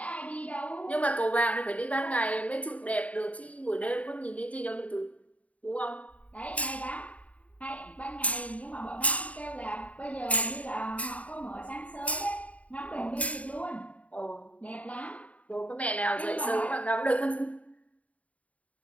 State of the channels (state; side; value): late; right; 0.068 ms